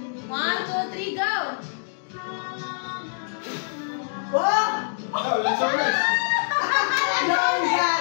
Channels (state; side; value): silent; right; digital silence